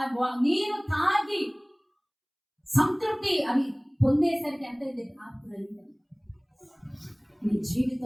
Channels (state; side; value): identical; both; correlation 1.00